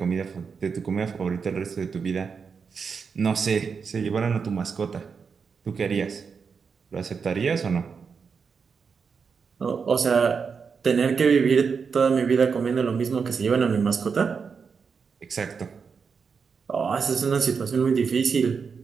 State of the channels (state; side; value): quieter; left; 5.7 dB